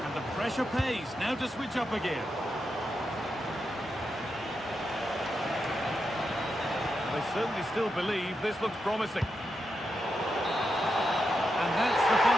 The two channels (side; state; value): both; normal; correlation 0.86